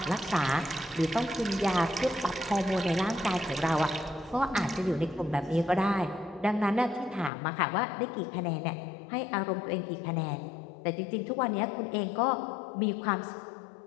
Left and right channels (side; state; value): right; drops out; at 7.3 s